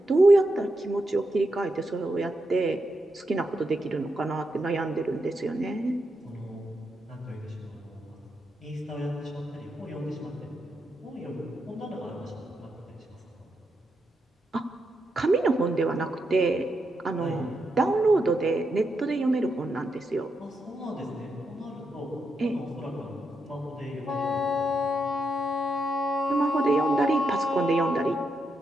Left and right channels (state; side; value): normal; both; correlation 0.83